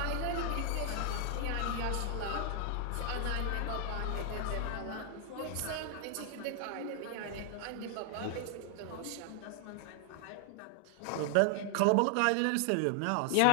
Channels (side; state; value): both; different; correlation 0.00